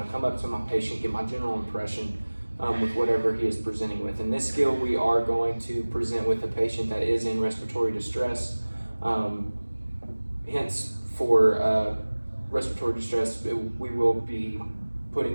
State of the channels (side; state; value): both; inverted; correlation -1.00